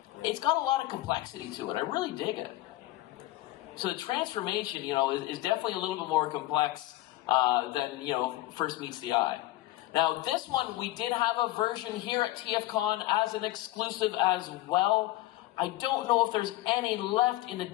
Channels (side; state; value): right; quieter; 17.1 dB